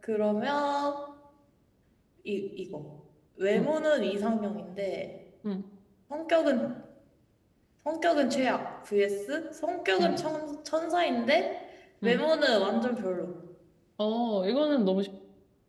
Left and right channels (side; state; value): both; identical; correlation 1.00